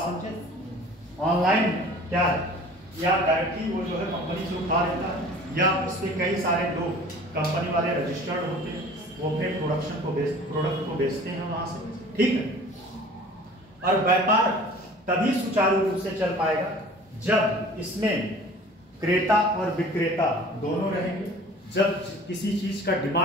ऑनलाइन में क्या है, या डायरेक्टली वो जो है कंपनी से उठा लेता है, या उसके कई सारे लोग कंपनी वाले रजिस्टर्ड होते हैं, वो अपने प्रोडक्ट को बेचते हैं वहां से, ठीक है। और व्यापार तभी सुचारू रूप से चल पाएगा जब इसमें क्रेता और विक्रेता दोनों रहेंगे। जब किसी चीज का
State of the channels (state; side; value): normal; both; correlation 0.46